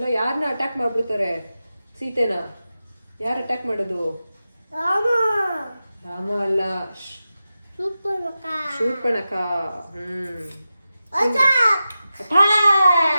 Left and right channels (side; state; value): both; inverted; correlation -0.92